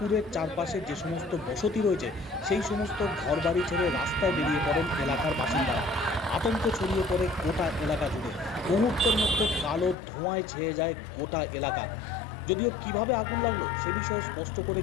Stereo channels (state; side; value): drops out; right; at 10.0 s